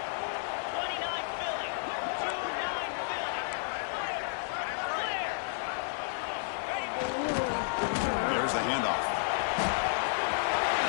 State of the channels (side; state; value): right; silent; 57 dB below the other